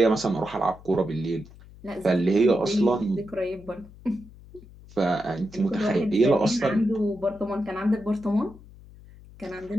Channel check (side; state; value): left; noise; hum, 21 dB below the sound